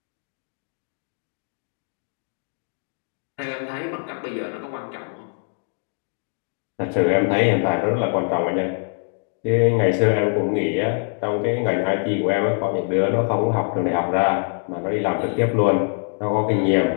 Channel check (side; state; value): right; silent; 56 dB below the other